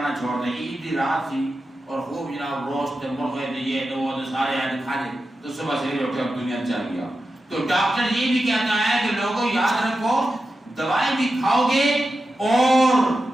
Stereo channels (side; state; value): both; normal; correlation 0.91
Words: چھوڑ دیں۔ عید کی رات تھی اور خوب جناب روسٹ مرغے تھے، یہ تو وہ سارے آئے کھا لے، تو صبح سے اٹھے اب دنیا چل گیا۔ تو ڈاکٹر یہ بھی کہتا ہے کہ لوگوں یاد رکھو دوائی بھی کھاؤ گے اور